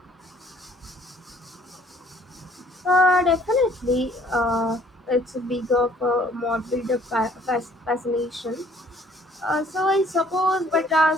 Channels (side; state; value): both; normal; correlation 0.58